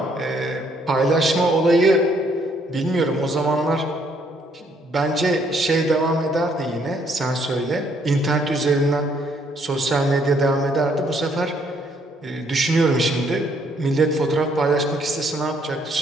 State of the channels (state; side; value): normal; both; correlation 0.68